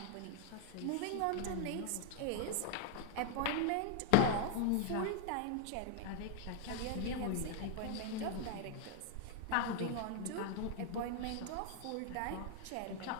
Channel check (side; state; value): both; different; correlation 0.00